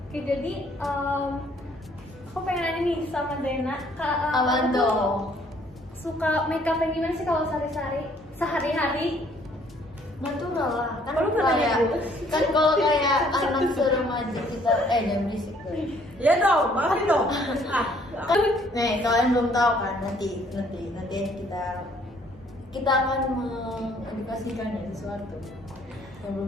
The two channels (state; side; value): normal; both; correlation 0.62